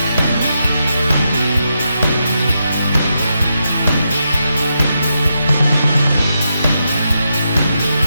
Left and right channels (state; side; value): inverted; both; correlation -0.84